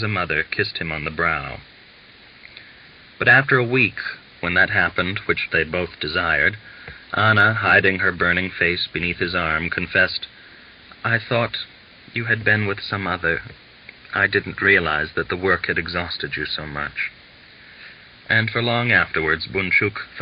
a mother kissed him on the brow. But after a week, when that happened which they both desired, Anna, hiding her burning face beneath his arm, confessed, "I thought you had been with some other. I didn't realize that the work had exhausted you so much." And for long afterwards, Bunchuk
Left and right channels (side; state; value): both; identical; correlation 1.00